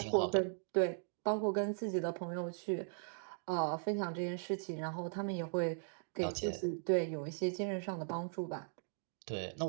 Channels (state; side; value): silent; left; digital silence